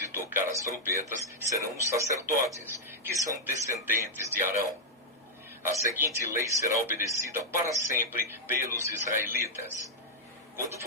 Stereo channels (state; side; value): normal; both; correlation -0.04